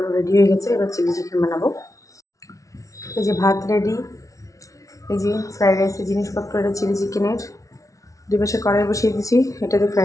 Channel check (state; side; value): late; right; 0.16 ms